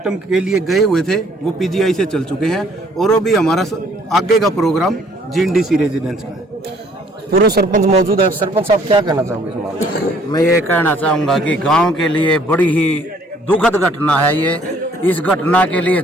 के लिए गए हुए थे वो PGI से चल चुके हैं और अभी हमारा आगे का प्रोग्राम GNDC रेजिडेंस का है। पूर्व सरपंच मौजूद है। सरपंच साहब क्या कहना चाहोगे इस मामले में? मैं ये कहना चाहूँगा कि गांव के लिए बड़ी ही दुखद घटना है ये। इस घटना के लिए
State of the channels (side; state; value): both; normal; correlation 0.61